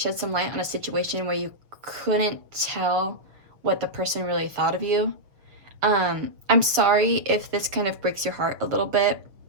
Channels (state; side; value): late; left; 6.8 ms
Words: some light on a situation where you couldn't tell what the person really thought of you. I'm sorry if this kind of breaks your heart a little bit.